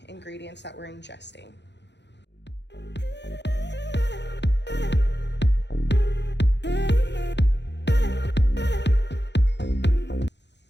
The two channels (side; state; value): right; late; 0.51 ms